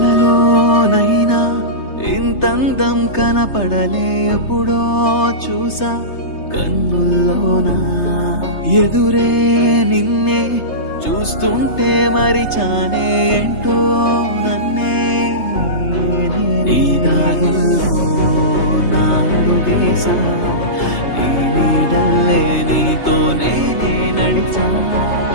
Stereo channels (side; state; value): right; late; 3.3 ms